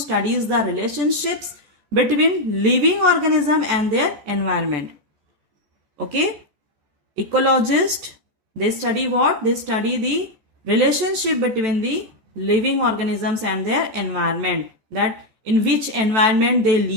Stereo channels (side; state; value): left; late; 14 ms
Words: the relationships between living organism and their environment. Okay, ecologist, they study what? They study the relationship between the living organisms and their environment, that in which environment they